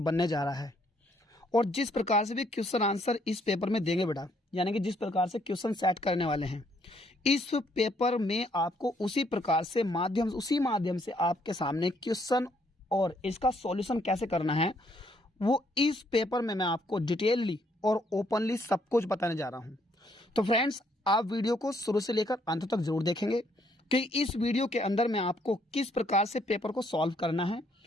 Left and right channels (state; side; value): normal; both; correlation 0.69